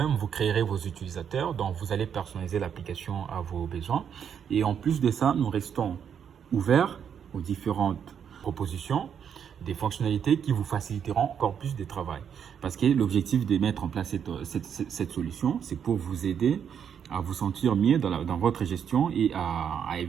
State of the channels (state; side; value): quieter; left; 8.0 dB